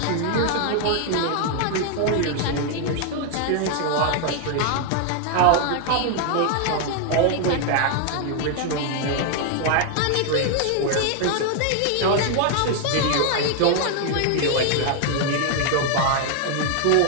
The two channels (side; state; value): both; different; correlation 0.00